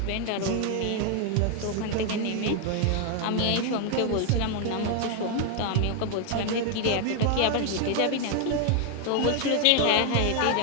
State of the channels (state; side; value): different; both; correlation 0.00